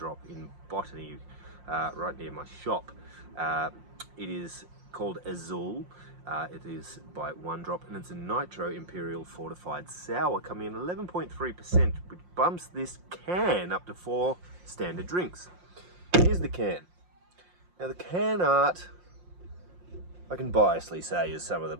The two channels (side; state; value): left; late; 5.6 ms